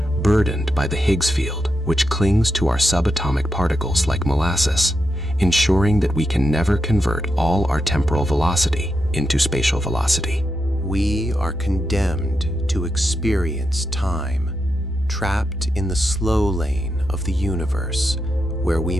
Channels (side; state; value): right; noise; rumble, 25 dB below the sound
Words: burdened by the Higgs field, which clings to our subatomic particles like molasses, ensuring that we can never convert all our temporal velocity into spatial velocity. We are condemned to experience time, trapped in the slow lane of the universe, where we